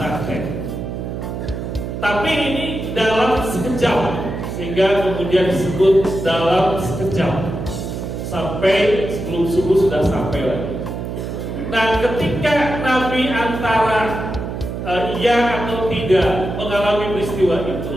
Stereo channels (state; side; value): noise; right; hum, 6 dB below the sound